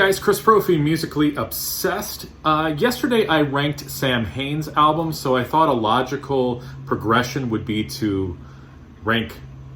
Chris Profi, Musically Obsessed. Yesterday I ranked Sam Hain's album, so I thought a logical progression would be to rank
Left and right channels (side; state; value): both; identical; correlation 1.00